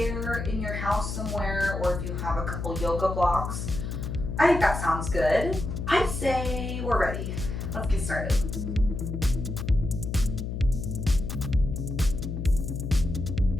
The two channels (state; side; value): noise; left; hum, 4 dB below the sound